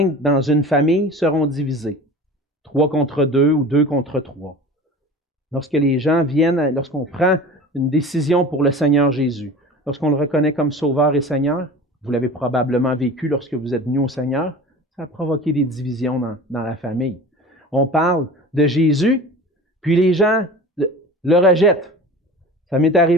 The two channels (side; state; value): both; normal; correlation 0.37